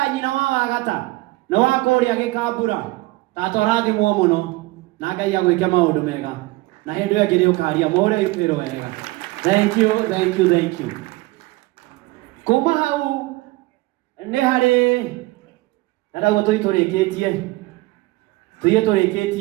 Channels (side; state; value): left; quieter; 20.7 dB